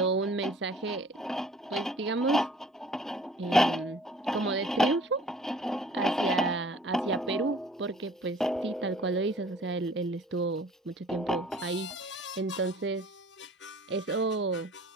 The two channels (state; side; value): normal; both; correlation 0.52